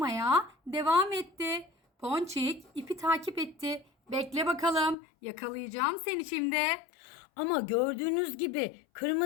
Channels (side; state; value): right; drops out; at 5.0 s